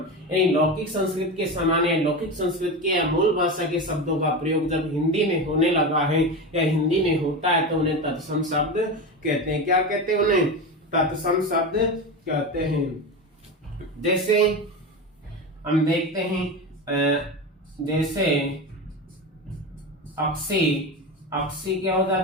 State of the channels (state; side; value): normal; both; correlation 0.22